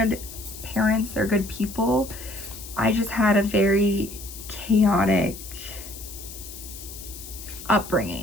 parents, they're good people. I just had a very chaotic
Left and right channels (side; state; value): left; noise; hiss, 13 dB below the sound